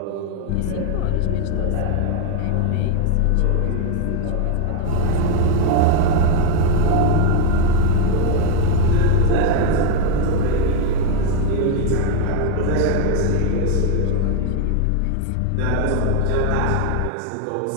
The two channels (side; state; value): both; different; correlation 0.01